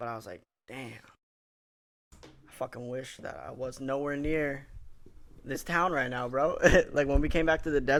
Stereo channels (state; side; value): identical; both; correlation 1.00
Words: I was like, damn. I fucking wish that I was nowhere near this town right now, bro. Like when we came back to the